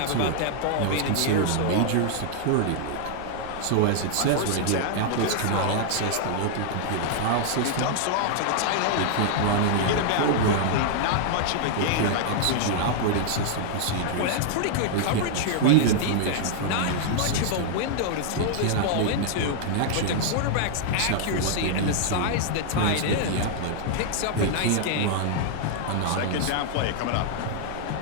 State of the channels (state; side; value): different; both; correlation -0.01